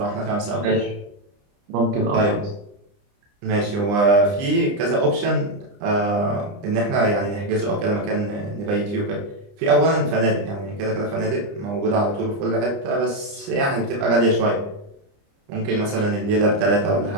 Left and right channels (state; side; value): late; left; 29 ms